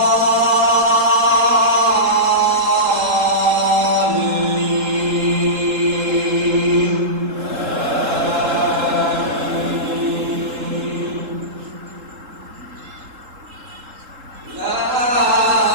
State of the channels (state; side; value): late; left; 3.7 ms